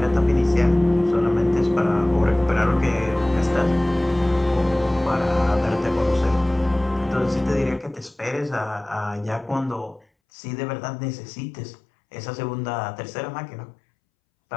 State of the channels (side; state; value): right; drops out; at 10.1 s